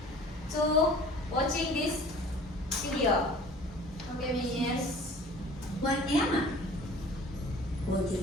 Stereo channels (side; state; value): both; normal; correlation 0.47